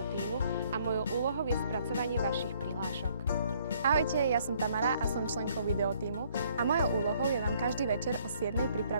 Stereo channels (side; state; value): both; inverted; correlation -0.64